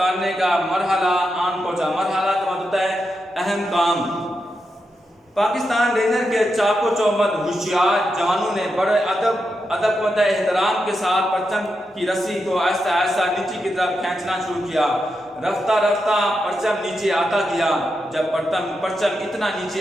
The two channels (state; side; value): normal; both; correlation 0.86